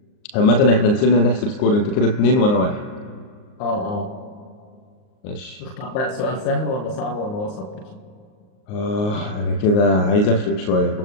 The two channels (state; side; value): late; right; 38 ms